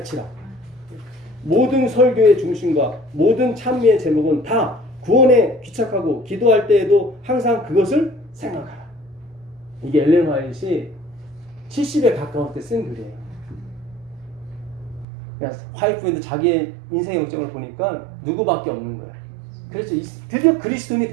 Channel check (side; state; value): left; drops out; at 15.1 s